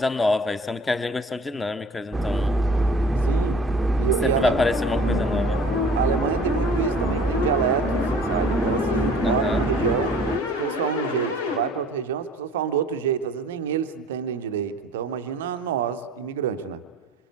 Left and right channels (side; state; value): both; normal; correlation 0.48